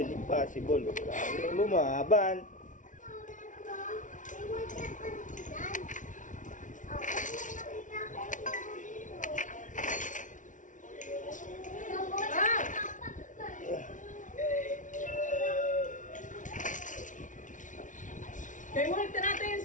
impossible. Kailangan lumaban. Kaya mo nagtarata yan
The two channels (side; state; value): right; late; 0.37 ms